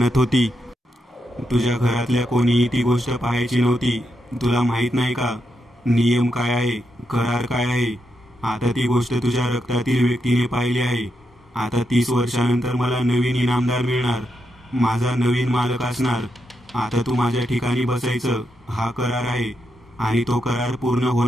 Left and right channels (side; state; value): both; normal; correlation 0.83